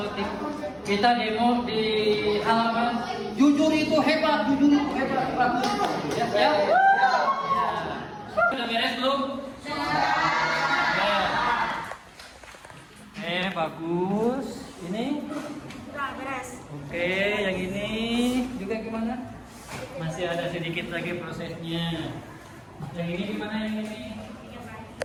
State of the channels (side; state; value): both; identical; correlation 1.00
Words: kita demo di halaman. Jujur itu hebat, bagus. Ya. Sudah beres belum? Ya. Bagus. Ini? Sudah beres. Oke, yang ini juga gimana? Masih ada sedikit lagi prosesnya. Yang ini gimana yang ini?